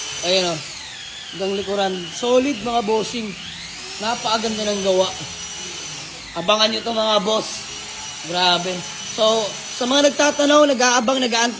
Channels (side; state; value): both; identical; correlation 1.00